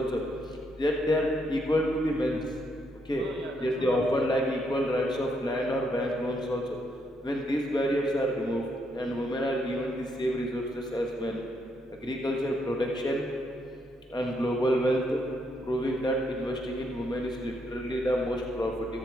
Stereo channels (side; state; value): both; normal; correlation 0.76